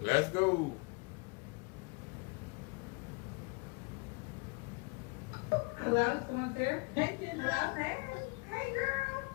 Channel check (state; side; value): quieter; right; 29.8 dB